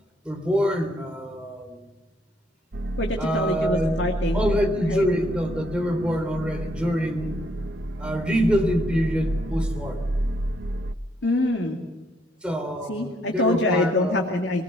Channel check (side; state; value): both; normal; correlation 0.71